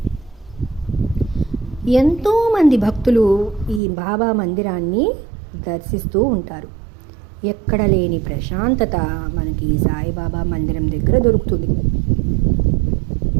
ఎంతోమంది భక్తులు ఈ బాబా మందిరాన్ని దర్శిస్తూ ఉంటారు. ఎక్కడ లేని ప్రశాంతత మనకి ఈ సాయిబాబా మందిరం దగ్గర దొరుకుతుంది.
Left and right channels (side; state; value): left; drops out; at 3.8 s